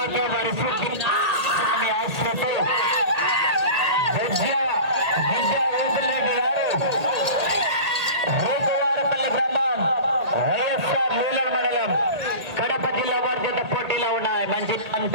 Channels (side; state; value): left; late; 1.8 ms